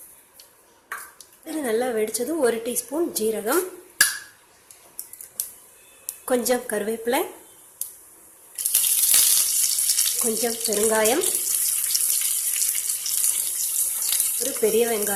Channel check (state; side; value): identical; both; correlation 1.00